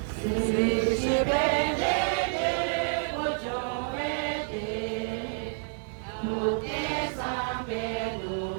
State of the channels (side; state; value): left; silent; 58 dB below the other